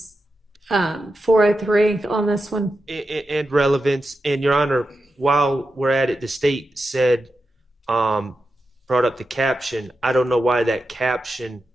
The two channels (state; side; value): normal; both; correlation 0.89